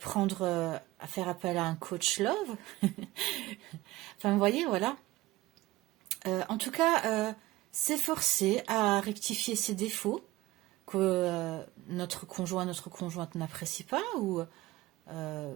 appel à un coach love. Enfin, vous voyez, voilà. En tout cas, s'efforcer à rectifier ses défauts que notre conjoint, notre conjointe n'apprécie pas, ou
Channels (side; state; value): left; quieter; 18.1 dB